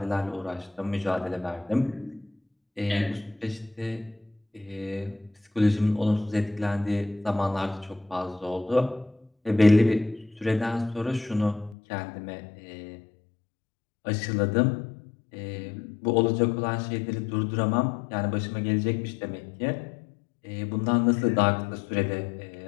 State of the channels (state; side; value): drops out; right; at 11.8 s